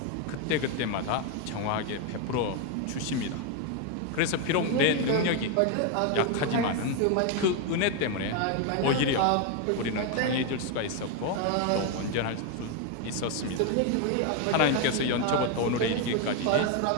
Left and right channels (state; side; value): different; both; correlation 0.01